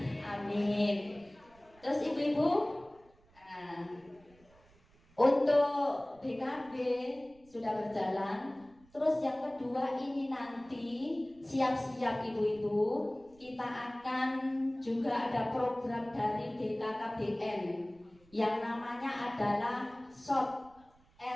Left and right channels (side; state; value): right; noise; rumble, 29 dB below the sound